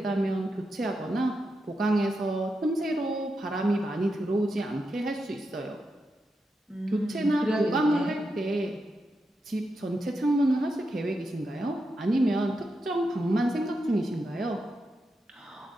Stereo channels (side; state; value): both; normal; correlation 0.86